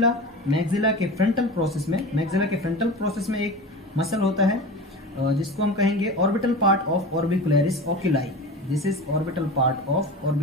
के फ्रंटल प्रोसेस में एक मसल होता है जिसको हम कहेंगे orbital part of orbicularis oculi. This is orbital part of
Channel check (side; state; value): both; normal; correlation 0.31